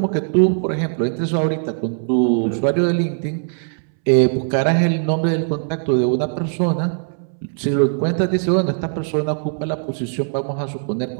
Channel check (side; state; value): left; silent; 66 dB below the other